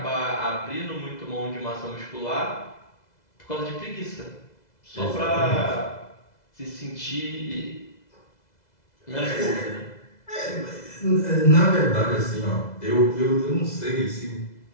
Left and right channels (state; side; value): late; right; 2.0 ms